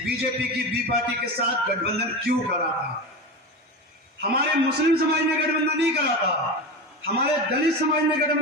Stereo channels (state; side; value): normal; both; correlation 0.23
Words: की बी पार्टी के साथ गठबंधन क्यों करा था। हमारे मुस्लिम समाज ने गठबंधन नहीं करा था, हमारे दलित समाज ने